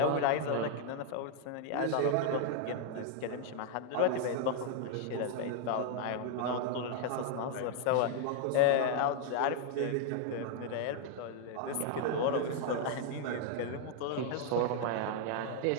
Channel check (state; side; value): different; both; correlation 0.00